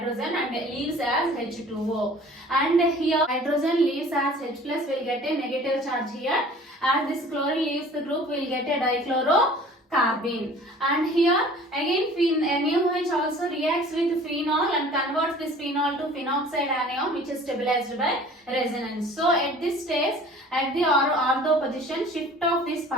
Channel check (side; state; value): both; normal; correlation 0.48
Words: and leaves as H2O. And here hydrogen leaves as H plus, will get a negative charge here. As this chlorine leaves the group, will get a dichlorocarbene. And here again NaOH also reacts with phenol and converts this phenol to phenoxide anion, which is stabilized by resonance. So at this stage, at the ortho position, shift of this